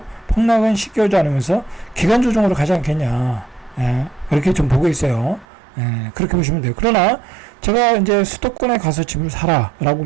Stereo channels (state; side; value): drops out; left; at 5.5 s